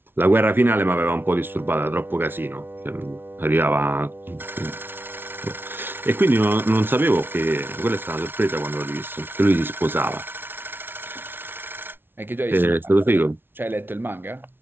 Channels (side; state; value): left; late; 0.11 ms